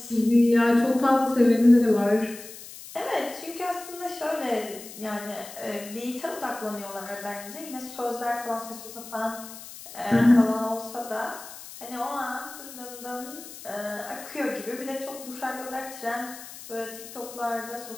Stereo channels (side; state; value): left; noise; hiss, 14 dB below the sound